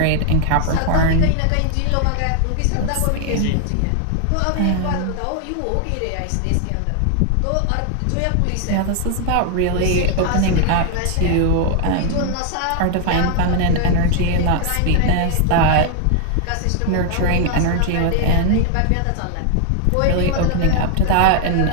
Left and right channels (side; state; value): both; different; correlation 0.00